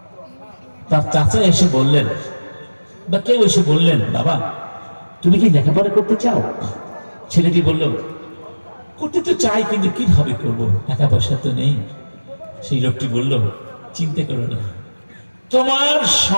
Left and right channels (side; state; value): both; inverted; correlation -1.00